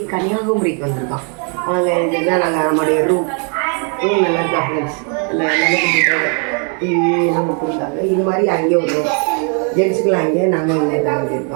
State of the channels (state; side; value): quieter; left; 39.9 dB